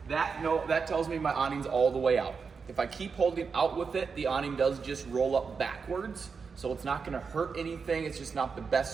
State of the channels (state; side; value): quieter; left; 5.4 dB